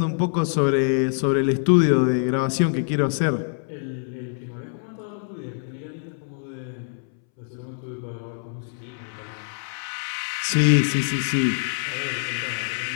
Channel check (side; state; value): right; silent; 62 dB below the other